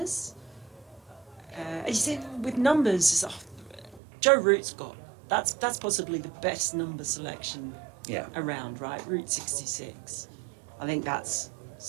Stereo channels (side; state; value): left; drops out; at 4.0 s